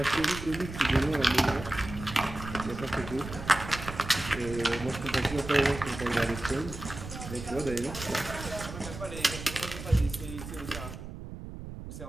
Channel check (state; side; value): noise; right; rumble, 10 dB below the sound